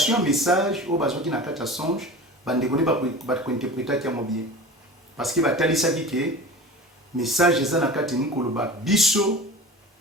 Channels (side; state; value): both; normal; correlation 0.35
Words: message au bazwaki na kati ya songe, bandeko ne ba ko interpréter yango bien. Parce que ba talisa ke message eza na kati ni koloba biso